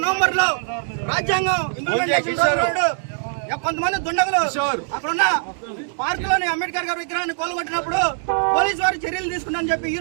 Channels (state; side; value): silent; left; digital silence